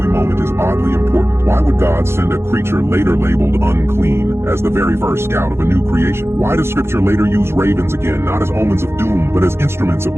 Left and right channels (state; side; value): late; left; 0.12 ms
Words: moment is oddly important. Why would God send a creature later labeled unclean as the very first scout of a new creation? Why does Scripture later use ravens again, not as omens of doom, but as instruments of